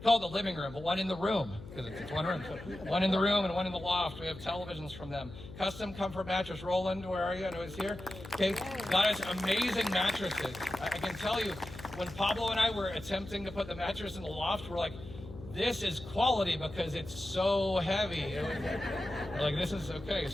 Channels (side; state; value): left; noise; hum, 14 dB below the sound